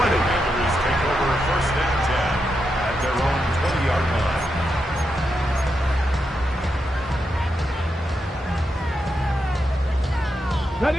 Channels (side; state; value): both; normal; correlation 0.85